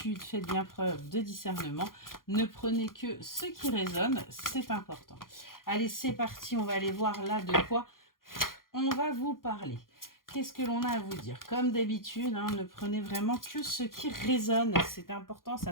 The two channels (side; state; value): right; late; 0.91 ms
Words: faites bien preuve de discernement. Ne prenez que ce qui résonne, c'est important. Allez, c'est parti, on va aller voir là de quoi on va vous parler. Qu'est-ce que l'on a à vous dire? Comme d'habitude, ne prenez vraiment que ce qui résonne. C'est important,